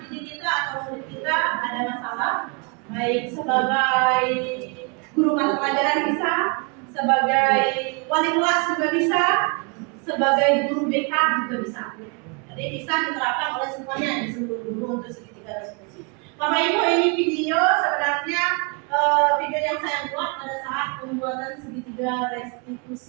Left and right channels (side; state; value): left; quieter; 34.0 dB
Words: didik kita atau murid kita ada masalah, baik sebagai guru mata pelajaran bisa, sebagai wali kelas juga bisa, sebagai guru BK juga bisa. Jadi bisa diterapkan oleh semuanya di seluruh guru untuk segitiga restitusi. Bapak Ibu, ini video sebenarnya video yang saya buat pada saat pembuatan segitiga